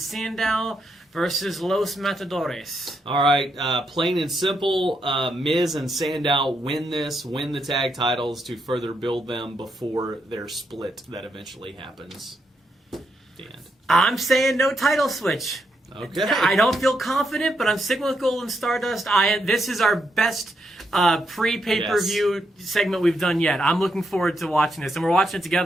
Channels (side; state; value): both; normal; correlation 0.80